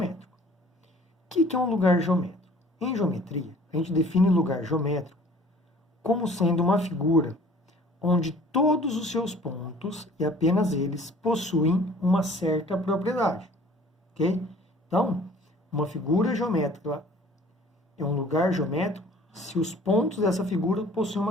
O que é um lugar geométrico? Em geometria, a gente define lugar geométrico como sendo uma figura onde todos os seus pontos, e apenas eles, possuem uma certa propriedade. Ok? Então, uma figura geométrica é um lugar geométrico se os pontos dessa figura possuem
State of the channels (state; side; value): normal; both; correlation 0.51